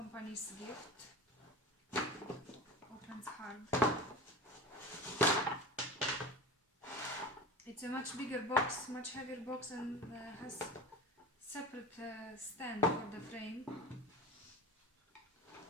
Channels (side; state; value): both; normal; correlation 0.32